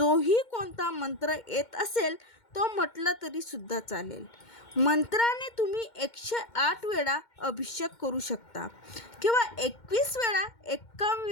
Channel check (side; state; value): right; late; 2.1 ms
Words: कोणता मंत्र येत असेल तो म्हटलं तरी सुद्धा चालेल. मंत्राने तुम्ही 108 वेळा अभिषेक करू शकता किंवा 21 वेळा 51